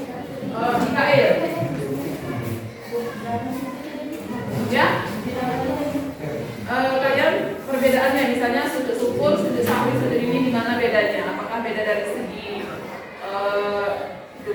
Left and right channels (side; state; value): both; identical; correlation 1.00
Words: Mikael. Ya, kalian perbedaannya misalnya sujud syukur, sujud sahwi, sujud ini di mana bedanya? Apakah beda dari segi